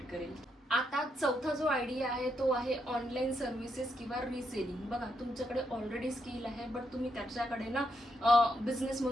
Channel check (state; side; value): normal; both; correlation 0.80